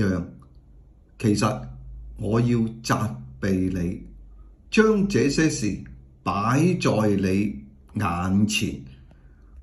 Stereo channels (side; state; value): both; identical; correlation 1.00